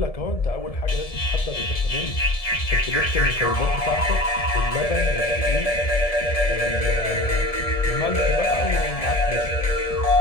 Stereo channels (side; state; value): right; late; 1.7 ms